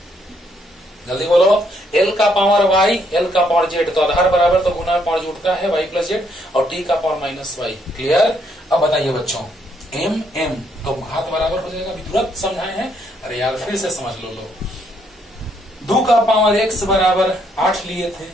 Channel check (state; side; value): normal; both; correlation 0.72